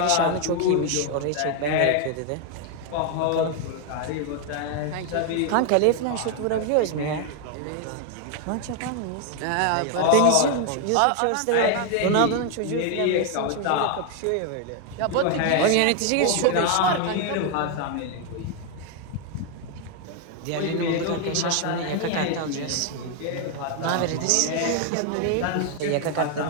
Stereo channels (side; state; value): both; different; correlation 0.01